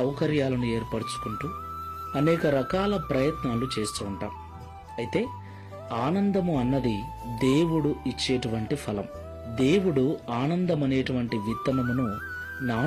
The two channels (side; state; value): both; identical; correlation 1.00